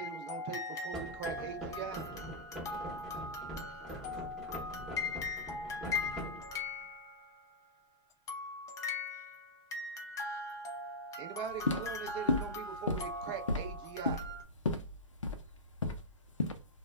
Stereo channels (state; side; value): normal; both; correlation -0.10